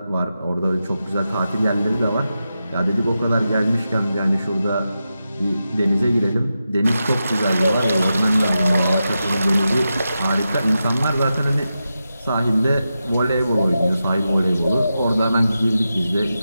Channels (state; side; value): inverted; both; correlation -0.90